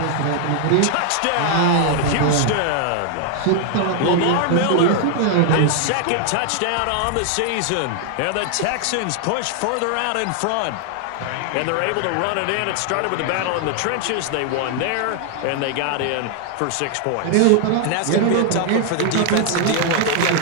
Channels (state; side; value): different; both; correlation 0.00